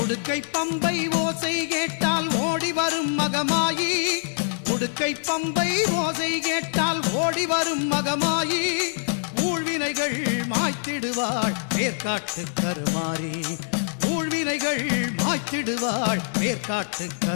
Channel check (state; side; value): silent; right; digital silence